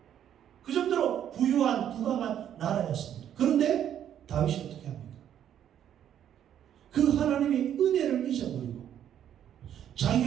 그 정도로 부유한 부강한 나라였습니다. 그런데 다윗이 어떻게 합니까? 그 하나님의 은혜를 잊어버리고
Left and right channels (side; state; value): left; quieter; 10.1 dB